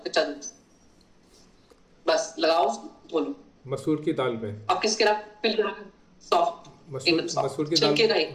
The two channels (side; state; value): both; identical; correlation 1.00